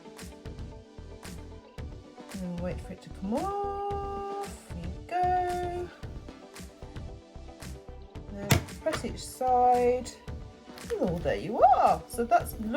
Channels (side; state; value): both; identical; correlation 1.00